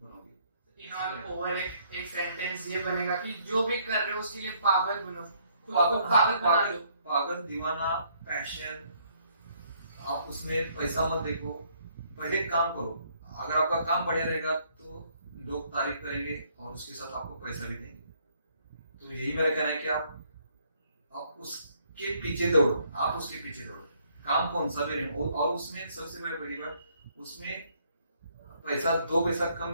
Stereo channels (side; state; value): both; inverted; correlation -0.66